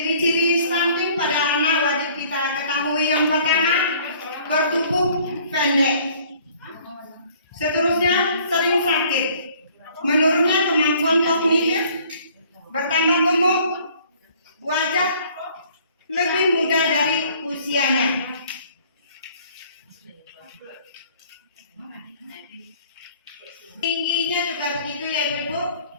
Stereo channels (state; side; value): inverted; both; correlation -0.56